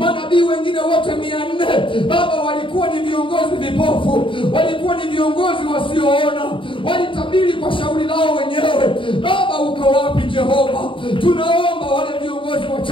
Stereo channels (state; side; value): late; right; 0.25 ms